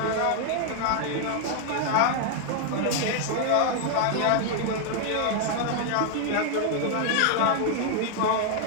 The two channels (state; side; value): different; both; correlation 0.00